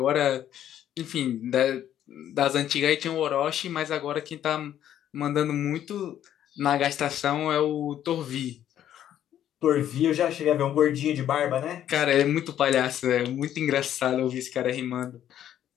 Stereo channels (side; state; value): right; quieter; 11.0 dB